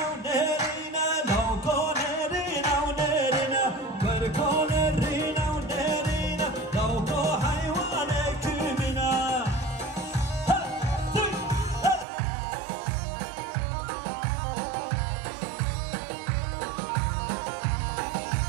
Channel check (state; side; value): drops out; left; at 12.1 s